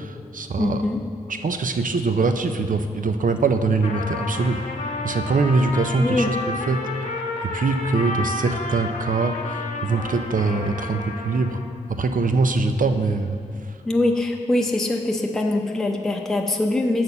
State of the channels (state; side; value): normal; both; correlation 0.68